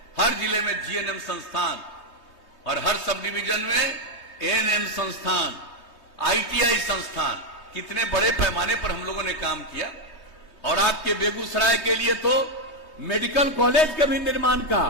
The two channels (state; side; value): late; right; 3.2 ms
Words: हर जिले में जीएनएम संस्थान और हर सब डिवीजन में एएनएम संस्थान, आईटीआई संस्थान। कितने बड़े पैमाने पर हम लोगों ने काम किया। और आपके बेगूसराय के लिए तो मेडिकल कॉलेज के भी निर्माण का,